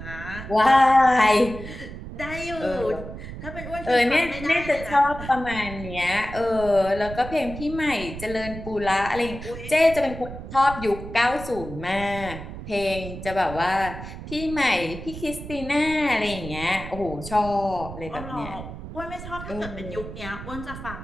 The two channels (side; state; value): right; noise; rumble, 11 dB below the sound